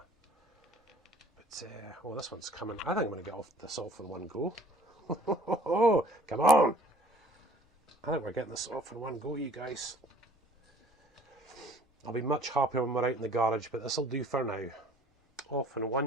But, oh, this one's coming. I think I'm going to get this off in one go. Oh, come on! I think we're getting this off in one go, you guys. I'll be much happier when we're out in the garage, but this'll do for now. Off in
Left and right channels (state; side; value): normal; both; correlation 0.54